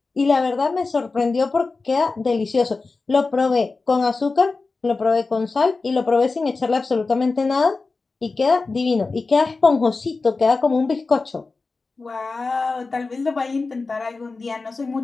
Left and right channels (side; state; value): right; quieter; 3.9 dB